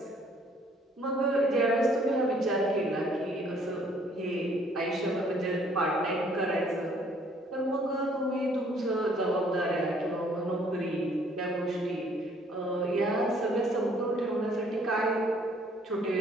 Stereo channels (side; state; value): both; normal; correlation 0.61